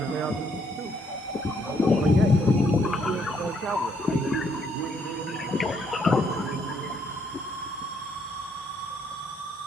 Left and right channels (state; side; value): normal; both; correlation 0.70